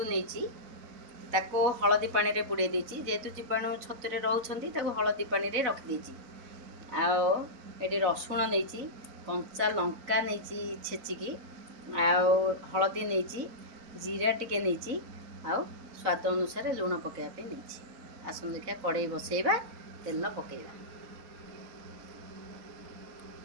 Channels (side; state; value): left; late; 3.9 ms